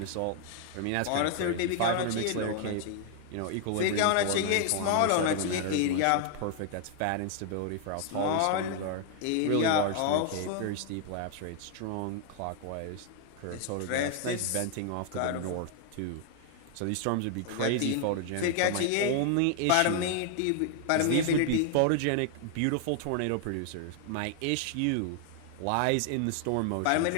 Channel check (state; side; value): different; both; correlation 0.00